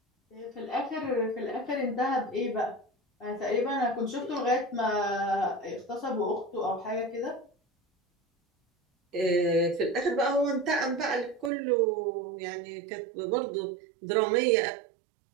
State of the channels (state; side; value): drops out; left; at 11.5 s